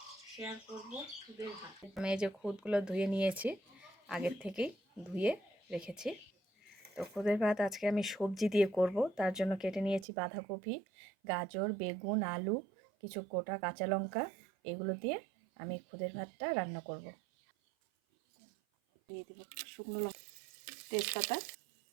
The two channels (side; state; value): left; drops out; at 10.1 s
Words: শেয়ার করব খুদের ভাত। আমি এই যে খুদগুলো ধুয়ে নিয়েছি, আগের থেকেই ধুয়ে রেখেছি। তো খুদের ভাত আজকে আমি সবজি দিয়ে করব। তার জন্য কেটে নিয়েছি বাঁধাকপি, গাজর, বেগুন, আলু, কিছু গোটা কাঁচা লঙ্কা। এগুলো দিয়ে আমি খুদের ভাতটা রান্না করব। দিয়ে দেব শুকনো লঙ্কা, তেজপাতা,